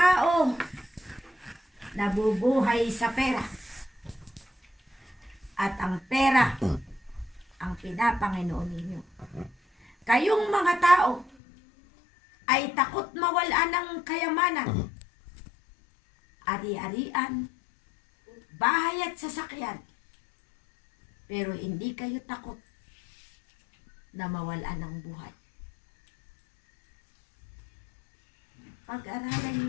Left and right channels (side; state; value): right; drops out; at 11.4 s